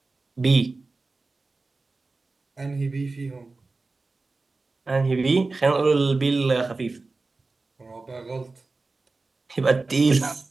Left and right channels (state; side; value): quieter; left; 3.6 dB